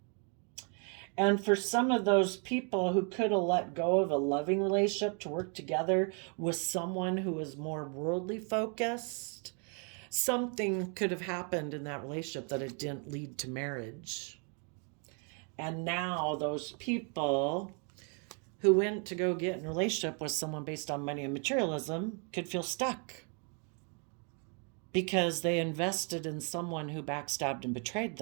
And for some of those people who could have let go of a loving relationship to work together with someone who is more worldly focused, something could have happened in that relationship that it didn't lead to marriage. And now those people who went to go get in a relationship with someone based on money and materialism could feel stuck because they invested in someone who backstabbed and betrayed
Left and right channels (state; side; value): quieter; left; 38.6 dB